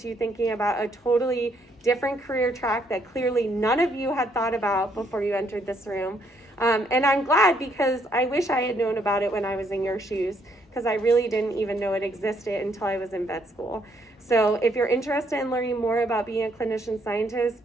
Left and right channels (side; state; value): both; normal; correlation 0.70